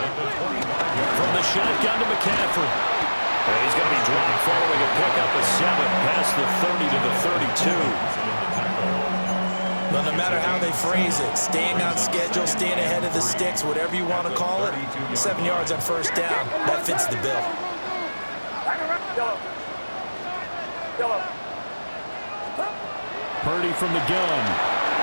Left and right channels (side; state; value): both; inverted; correlation -1.00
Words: the 25. From the shotgun to McCaffrey. And he's going to be dropped following a pickup of 7 past the 30 to the 32. Well, no matter how they phrase it, staying on schedule, staying ahead of the sticks, whatever you want to call it, 7 yards on first down, that fits the bill. Purdy from the gun.